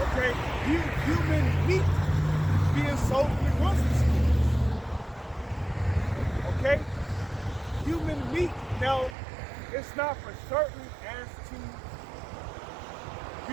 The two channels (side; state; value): left; drops out; at 9.2 s